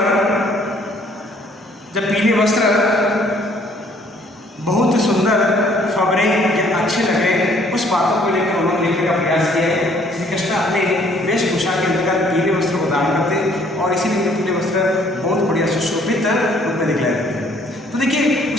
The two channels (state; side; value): normal; both; correlation 0.61